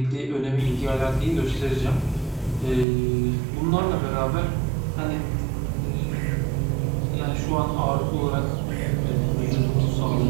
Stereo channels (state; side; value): drops out; left; at 2.9 s